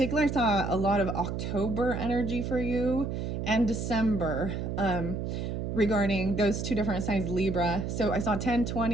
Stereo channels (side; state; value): right; noise; hum, 3 dB below the sound